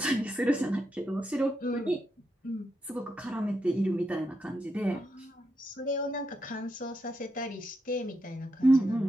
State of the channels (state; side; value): normal; both; correlation 0.83